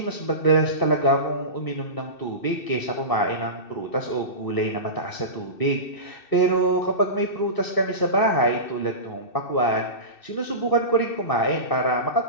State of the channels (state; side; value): late; right; 2.6 ms